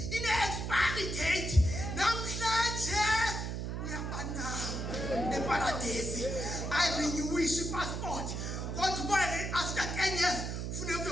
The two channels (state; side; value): noise; right; hum, 3 dB below the sound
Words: ine-expiry date namhlanje uyabanama eParadesi ayirenewisha i-passport kodwa after 10 years funeka